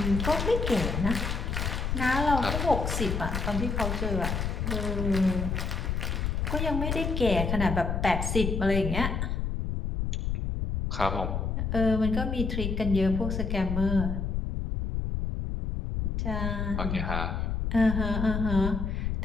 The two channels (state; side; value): noise; left; rumble, 1 dB below the sound